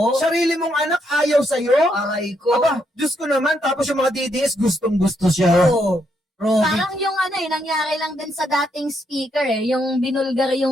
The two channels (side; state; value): both; normal; correlation 0.76